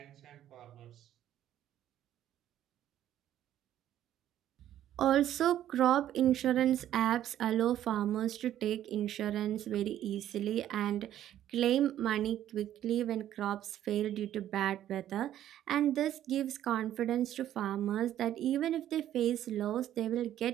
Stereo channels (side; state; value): left; quieter; 11.8 dB